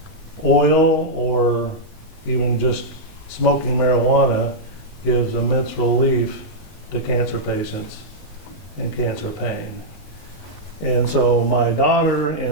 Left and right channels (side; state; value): right; late; 19 ms